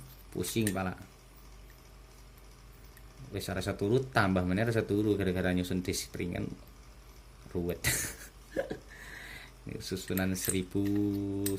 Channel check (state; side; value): identical; both; correlation 1.00